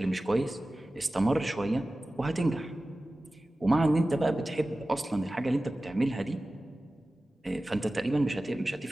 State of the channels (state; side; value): normal; both; correlation 0.96